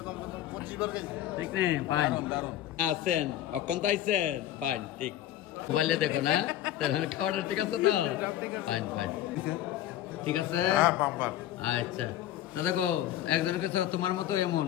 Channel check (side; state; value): right; quieter; 12.6 dB